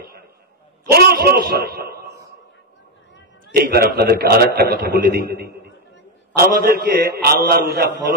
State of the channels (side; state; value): both; normal; correlation 0.06